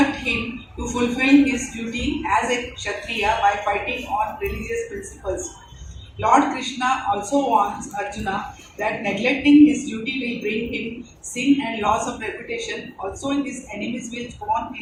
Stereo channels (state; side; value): identical; both; correlation 1.00